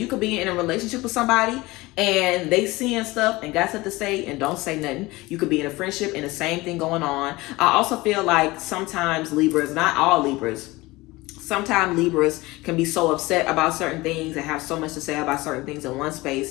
could be in a relationship with somebody and they seeing stuff and got stuff to say and don't say nothing. You could be in a friendship and the same thing going on. I also feel like sometimes Libras, not all Libras, sometimes Libras can be so upset about certain things and have so much to say about certain things in one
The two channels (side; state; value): right; quieter; 20.9 dB